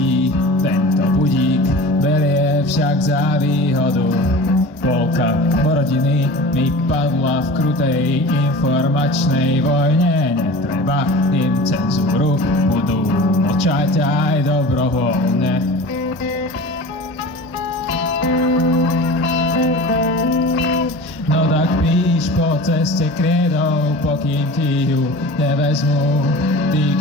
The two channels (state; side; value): normal; both; correlation 0.37